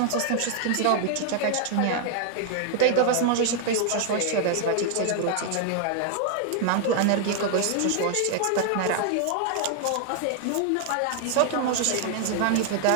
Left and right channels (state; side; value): different; both; correlation 0.00